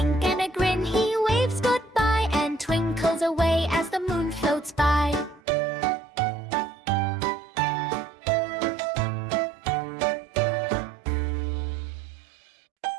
and a grin he waves goodbye and twinkles away as the moon floats by.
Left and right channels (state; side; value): drops out; left; at 5.4 s